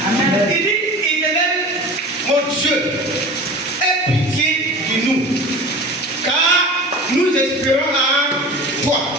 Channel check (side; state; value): both; normal; correlation 0.37